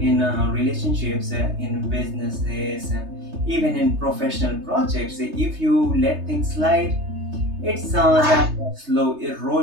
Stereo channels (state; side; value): late; left; 3.3 ms